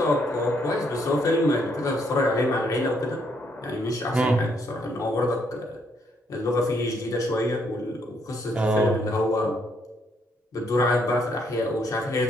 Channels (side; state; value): both; normal; correlation 0.72